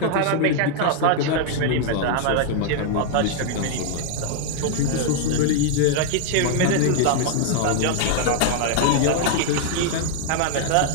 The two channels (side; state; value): both; different; correlation 0.00